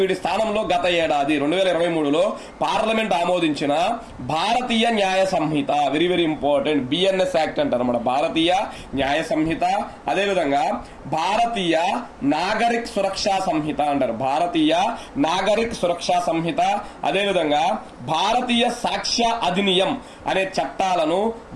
వీటి స్థానంలో గత ఏడాది 2023లో పార్లమెంట్ ఆమోదించిన Bharatiya Nyaya Sanhita, very very important, BNS act అంటారు అన్నమాట. భారతీయ న్యాయ సంహిత, అదేవిధంగా భారతీయ నాగరిక్ సురక్షా సంహిత అంటారు. భారతీయ నాగరిక్ సురక్షా సంహిత, అదేవిధంగా భారతీయ సాక్ష్య అధినియం అనే చట్టాలను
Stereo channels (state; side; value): identical; both; correlation 1.00